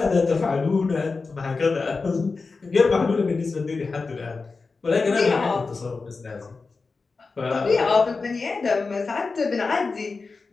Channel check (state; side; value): quieter; right; 4.2 dB